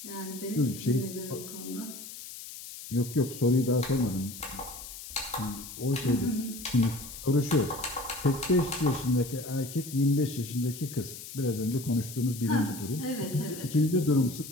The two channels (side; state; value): left; noise; hiss, 12 dB below the sound